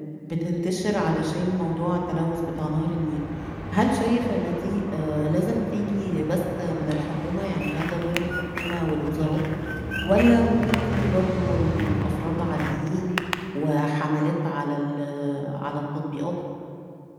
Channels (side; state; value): both; identical; correlation 1.00